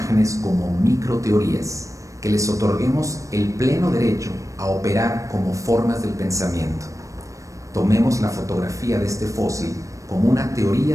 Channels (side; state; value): left; late; 0.16 ms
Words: como microteorías, que les otorguemos el pleno derecho a operar como formas del pensamiento. Tomemos la fotografía de este fósil como una